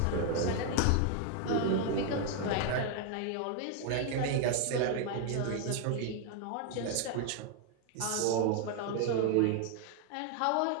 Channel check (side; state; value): both; different; correlation 0.00